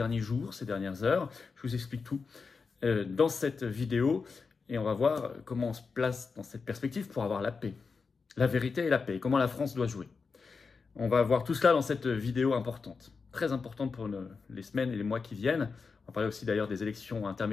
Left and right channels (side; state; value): right; quieter; 4.9 dB